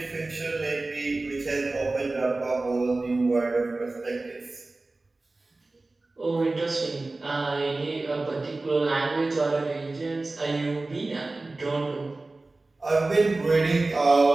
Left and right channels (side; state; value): left; quieter; 3.2 dB